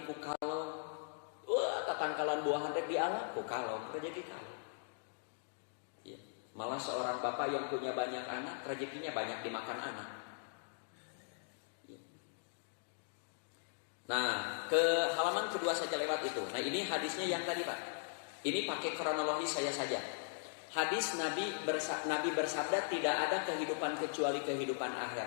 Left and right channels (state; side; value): silent; right; digital silence